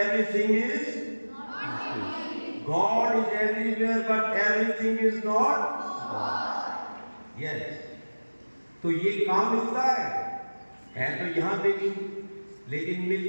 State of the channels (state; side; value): inverted; both; correlation -1.00